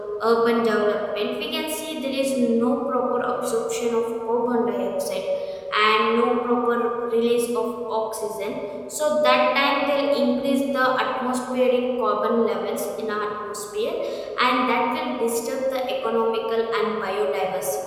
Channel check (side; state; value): both; identical; correlation 1.00